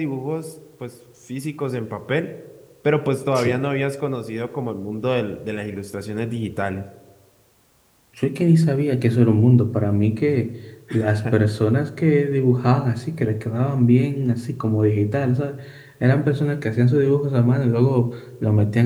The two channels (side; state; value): both; identical; correlation 1.00